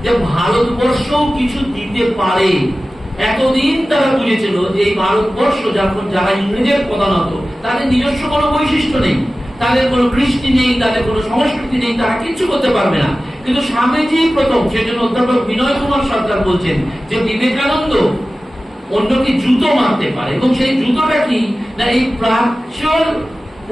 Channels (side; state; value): both; normal; correlation 0.96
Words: যে ভারতবর্ষও কিছু দিতে পারে। এতদিন তারা বুঝেছিল যে এই ভারতবর্ষ যখন যারা ইংরেজের প্রধানত, তাদের নিজস্ব কোনো বৈশিষ্ট্য নেই, তাদের কোনো কৃষ্টি নেই, তাদের কোনো সংস্কৃতি নেই, তারা কিচ্ছু করতে পারবে না। কিন্তু স্বামীজি প্রথম, সেজন্য অধ্যাপক বিনয় কুমার সরকার বলছেন যে বিবেকানন্দ অন্যকে জুতো মারতে পারে, এবং সেই জুতোটা কি না, এই প্রাচ্যর